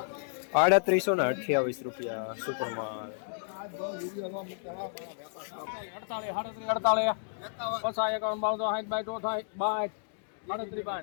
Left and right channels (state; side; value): silent; right; digital silence